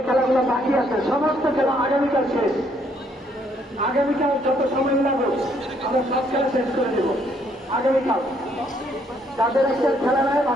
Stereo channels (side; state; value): both; normal; correlation 0.68